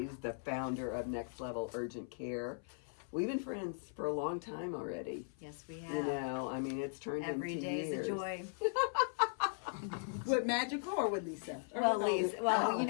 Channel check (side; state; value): right; silent; 52 dB below the other